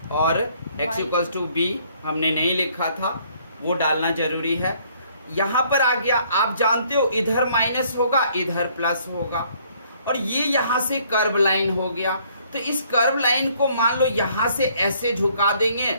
और x इक्वल्स टू b हमने नहीं लिखा था, वो डालना जरूरी है। यहां पर आ गया, आप जानते हो इधर माइनस होगा, इधर प्लस होगा, और ये यहां से कर्व लाइन हो गया। तो इस कर्व लाइन को मान लो यहां से ऐसे झुका देंगे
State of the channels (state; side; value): inverted; both; correlation -0.63